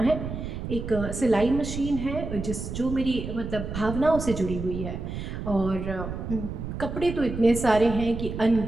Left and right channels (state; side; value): noise; right; rumble, 6 dB below the sound